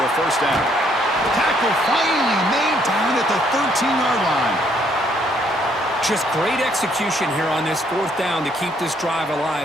a 1st down. Tackle finally made down at the 13-yard line. Just great execution here on this fourth down to keep this drive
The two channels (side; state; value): both; normal; correlation 0.68